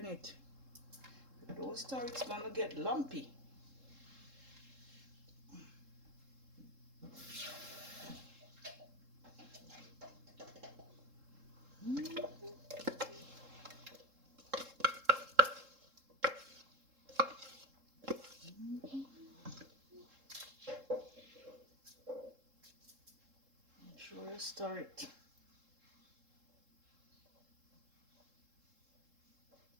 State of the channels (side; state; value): left; late; 3.7 ms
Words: it. If you don't stir, it's gonna get lumpy. Make sure you stir it.